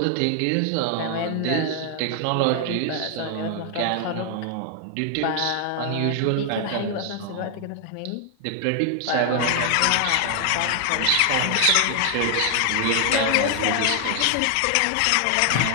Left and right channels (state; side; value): different; both; correlation 0.00